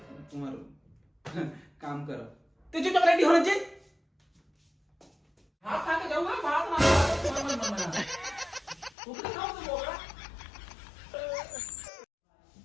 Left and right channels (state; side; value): drops out; right; at 9.0 s